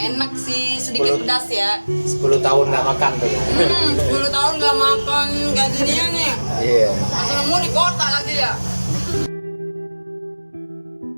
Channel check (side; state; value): both; inverted; correlation -1.00